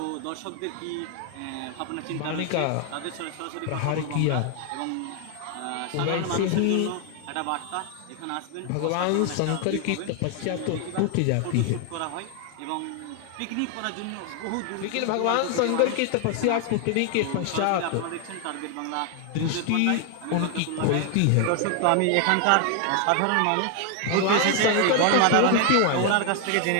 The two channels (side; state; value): both; different; correlation 0.00